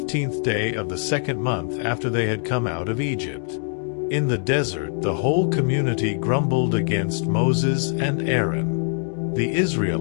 day of the second month after they had come out of Egypt. In the desert, the whole community grumbled against Moses and Aaron. The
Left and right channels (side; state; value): right; silent; 57 dB below the other